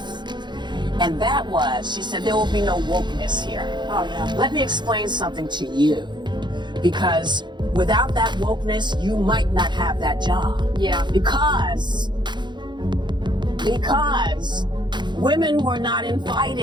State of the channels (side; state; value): left; late; 0.22 ms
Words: And that was, she said, there will be no wokeness here. Oh, yeah. Let me explain something to you. Because without that wokeness, you might not have that job. Yeah. Because women were not